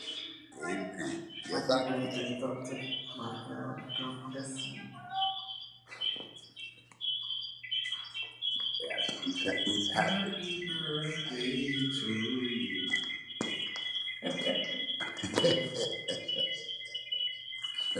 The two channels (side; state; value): both; identical; correlation 1.00